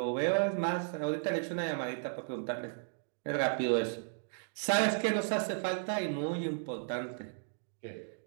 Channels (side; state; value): left; silent; digital silence